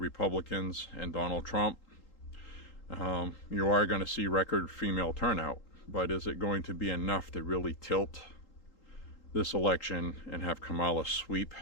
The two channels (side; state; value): right; late; 3.8 ms